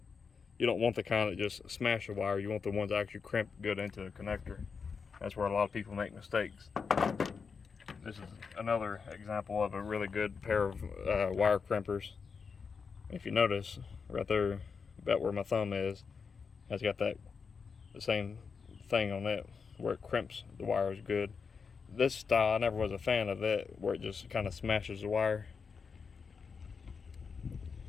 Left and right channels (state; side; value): quieter; right; 5.5 dB